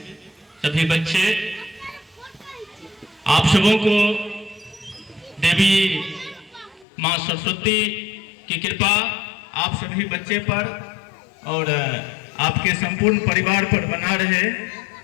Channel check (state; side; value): drops out; right; at 6.9 s